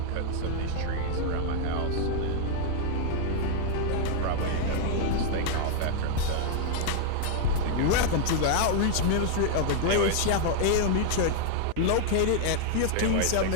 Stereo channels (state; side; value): different; both; correlation 0.00